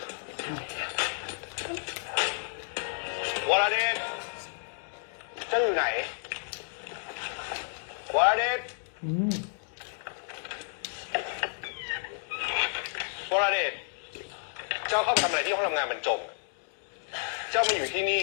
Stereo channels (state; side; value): silent; right; digital silence